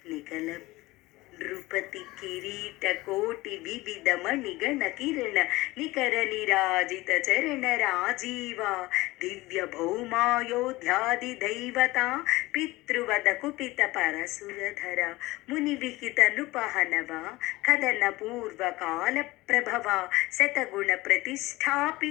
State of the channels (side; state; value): right; quieter; 19.9 dB